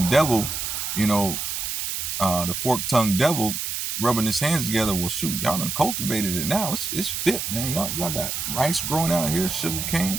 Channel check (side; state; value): right; noise; hiss, 3 dB below the sound